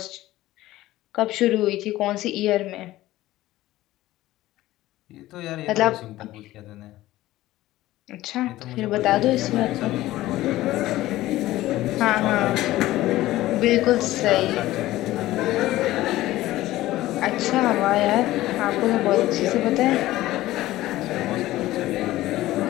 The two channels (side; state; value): right; quieter; 16.2 dB